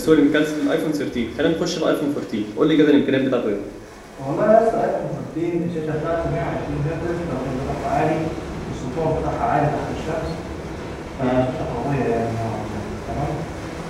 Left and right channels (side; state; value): both; identical; correlation 1.00